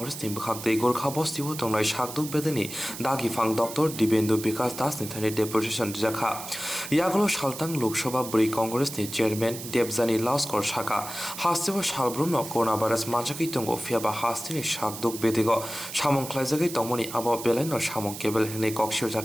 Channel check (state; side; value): noise; right; hiss, 10 dB below the sound